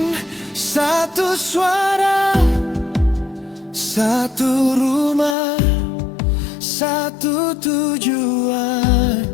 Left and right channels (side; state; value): right; drops out; at 5.4 s